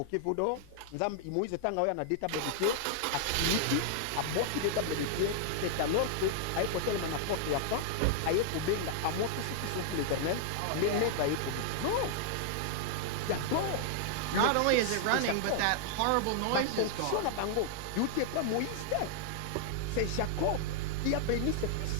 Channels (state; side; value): different; both; correlation 0.00